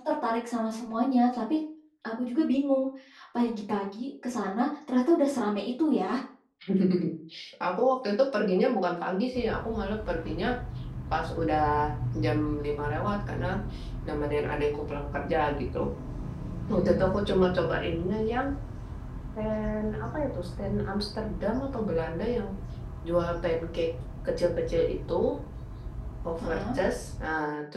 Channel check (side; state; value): both; identical; correlation 1.00